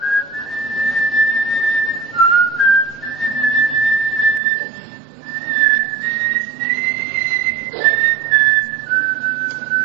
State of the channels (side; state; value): left; drops out; at 4.4 s